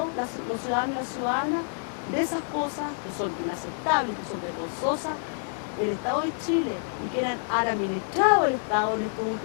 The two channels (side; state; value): right; silent; 60 dB below the other